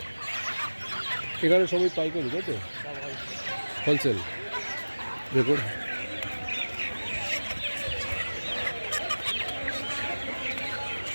এখানে সবই পাইকারি, তাই তো? হোলসেল। দেখুন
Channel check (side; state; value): both; inverted; correlation -1.00